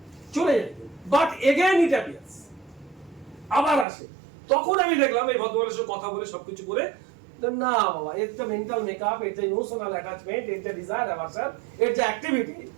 যায়, বাট এগেইন ইট অ্যাপিয়ার্স, আবার আসে। তখন আমি দেখলাম এই ভদ্রমানের সাথে কথা বলে সবকিছু করে, না বাবা, এর যে মেন্টাল মেকআপ, এর যে ইমোশনাল অ্যাটাচমেন্ট, এর যে ডিজায়ার অ্যাভারশন, এর যে activity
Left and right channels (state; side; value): drops out; left; at 3.9 s